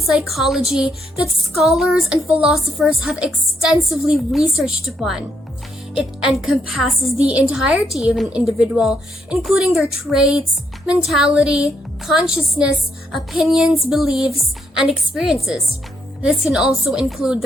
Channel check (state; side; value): normal; both; correlation 0.75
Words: that scholars and philosophers have extensively researched upon. It encompasses the entirety of an individual, including their traits, mentality, consciousness, opinions, beliefs, and experiences. This can also include